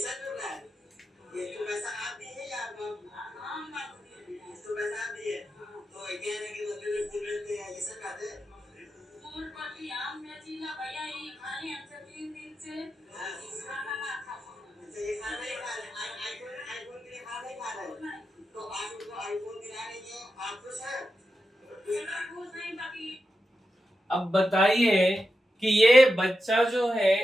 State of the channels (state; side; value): normal; both; correlation 0.89